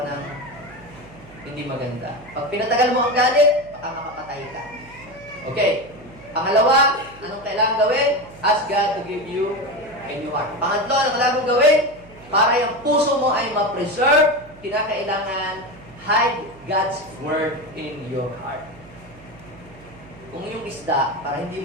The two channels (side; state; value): right; noise; hum, 22 dB below the sound